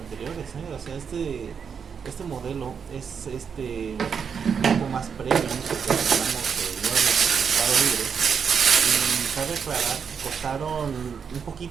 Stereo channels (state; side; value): quieter; left; 6.7 dB